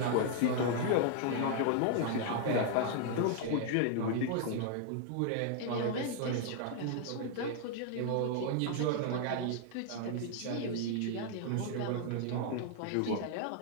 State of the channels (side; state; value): both; different; correlation 0.00